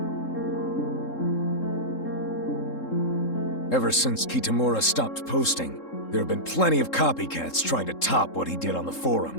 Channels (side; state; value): right; late; 3.7 ms